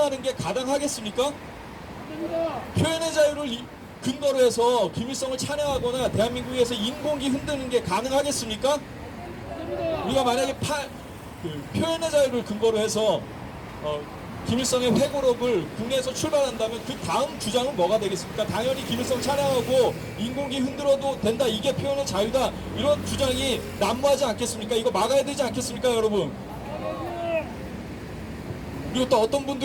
게 가당하겠습니까? 표현의 자유를 근거로 해서 김일성을 찬양하거나 대한민국에서 인공기 흔드는 게 가능하겠습니까? 우리가 만약에 표현의 자유를 근거로 해서 김일성의 회고록을 국내에서 출발한다면 그 다음 주장은 뭐가 되겠습니까? 당연히 김일성 찬양하고 인공기 흔들어도 된다, 이게 표현의 자유다, 이런 주장이 난무하지 않겠습니까? 이거 막아야 되지 않겠습니까, 여러분? 그리고 또 어떤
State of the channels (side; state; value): both; identical; correlation 1.00